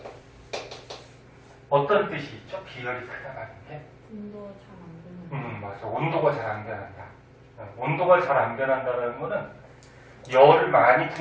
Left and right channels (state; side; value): identical; both; correlation 1.00